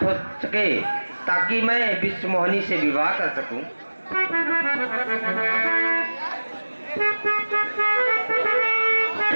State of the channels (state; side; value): inverted; both; correlation -1.00